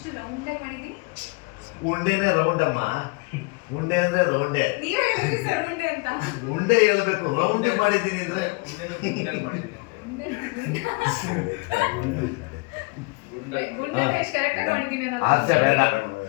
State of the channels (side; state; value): right; quieter; 29.1 dB